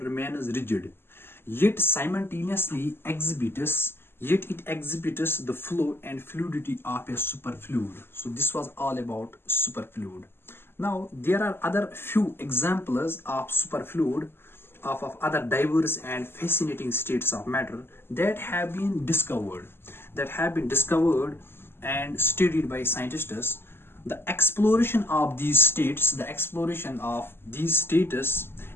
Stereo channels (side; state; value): right; late; 0.11 ms